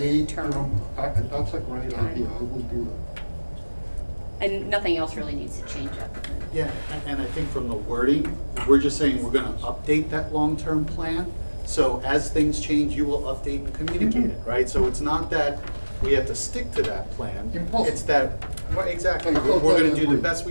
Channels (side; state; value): both; inverted; correlation -1.00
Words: term. That's a great idea. I will do that. And nothing else really needs to change up. Yeah, and I think from the wording, we're just saying we're going to update that long-term plan. So as things change, you will update and communicate it, right? So it's not that we have to stick to that plan. It's that, exactly, we're going to do the best